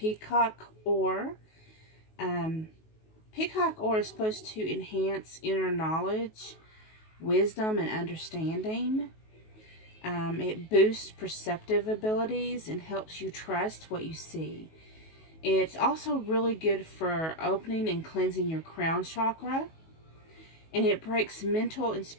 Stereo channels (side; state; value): right; late; 19 ms